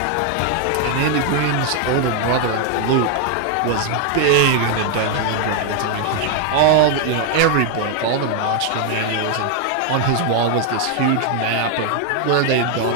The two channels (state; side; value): different; both; correlation 0.00